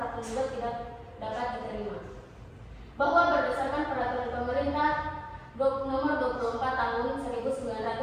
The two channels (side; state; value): both; identical; correlation 1.00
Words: penggugat tidak dapat diterima. Bahwa berdasarkan peraturan pemerintah nomor 24 tahun